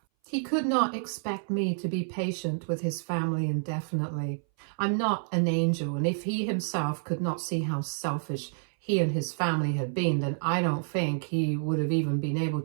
He could not expect me to be patient with his family indefinitely. I'm not an angel, and if he himself could not see how selfish he and his family had been, then I don't think he would have even been able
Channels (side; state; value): left; silent; 59 dB below the other